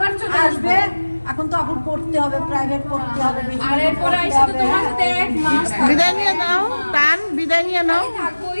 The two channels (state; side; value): inverted; both; correlation -1.00